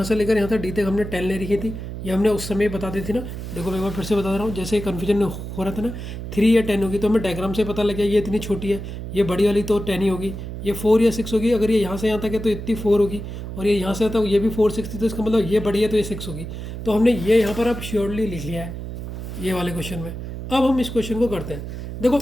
से लेकर यहाँ तक डी तक हमने 10 ले रखी थी, ये हमने उस समय बता दी थी ना। देखो मैं एक बार फिर से बता रहा हूँ, जैसे कन्फ्यूजन हो रहा था ना, 3 या 10 होगी, तो हमें डायग्राम से पता लग गया ये इतनी छोटी है, ये बड़ी वाली तो 10 ही होगी, ये 4 या 6 होगी। अगर ये यहाँ से यहाँ तक है तो इतनी 4 होगी, और ये यहाँ से आता है ये भी 4 6 थी, तो इसका मतलब ये बड़ी है तो ये 6 होगी। तो हमने ये यहाँ पर अब श्योरली लिख लिया है ये वाले क्वेश्चन में। अब हम इस क्वेश्चन को करते हैं। देखो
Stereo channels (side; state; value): right; noise; hum, 8 dB below the sound